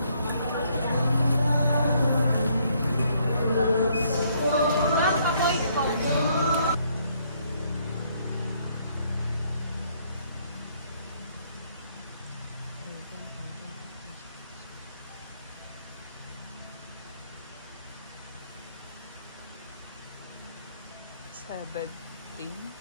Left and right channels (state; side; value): inverted; both; correlation -0.69